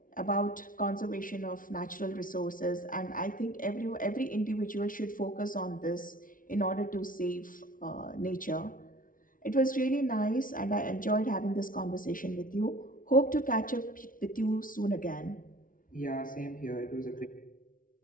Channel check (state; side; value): late; right; 0.39 ms